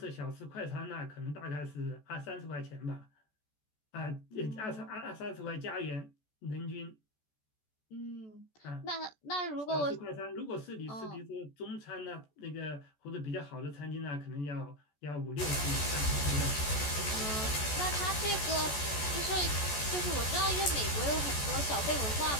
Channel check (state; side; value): late; right; 14 ms